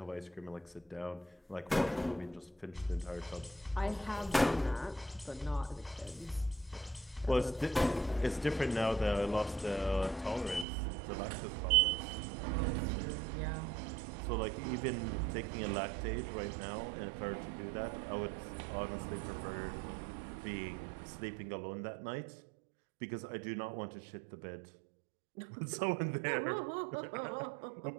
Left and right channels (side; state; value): left; drops out; at 10.7 s